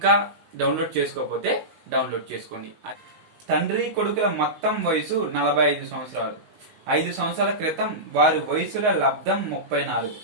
డౌన్లోడ్ చేసుకోకపోతే డౌన్లోడ్ చేసుకోండి. తండ్రి కొడుకుల మొత్తం వయసు 45 సంవత్సరాలు. 5 సంవత్సరాల క్రితం వారి వయసుల లబ్ధం 34.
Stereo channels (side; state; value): left; late; 19 ms